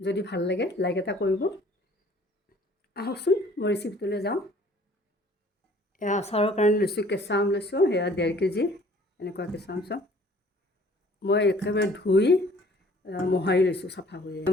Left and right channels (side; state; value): both; normal; correlation 0.55